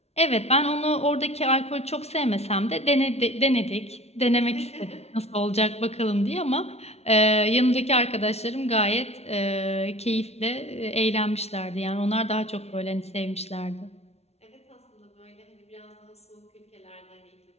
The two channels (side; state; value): right; late; 0.31 ms